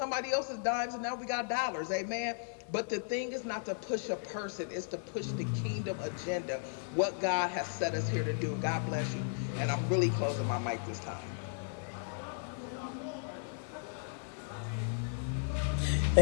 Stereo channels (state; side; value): silent; right; digital silence